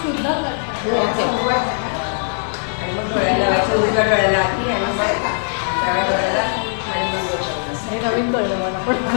शुद्ध हे नवीन कळलं मला पण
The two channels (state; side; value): silent; right; 66 dB below the other